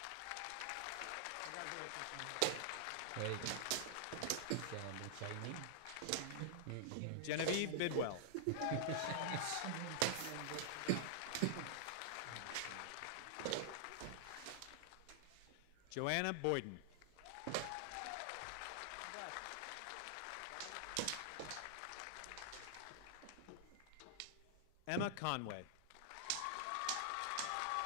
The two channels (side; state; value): both; different; correlation -0.01